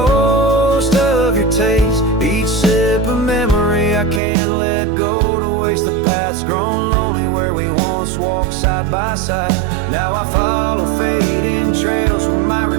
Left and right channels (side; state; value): left; drops out; at 4.2 s